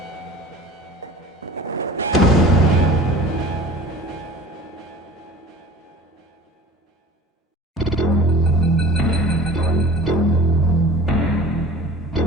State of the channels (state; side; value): normal; both; correlation 0.41